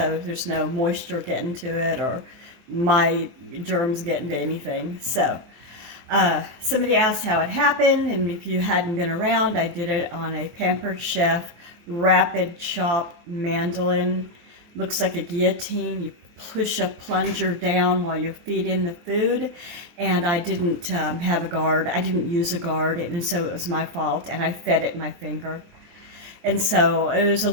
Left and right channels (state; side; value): late; left; 24 ms